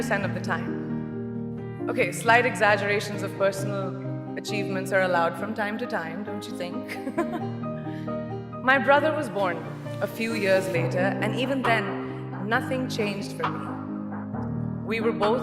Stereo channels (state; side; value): identical; both; correlation 1.00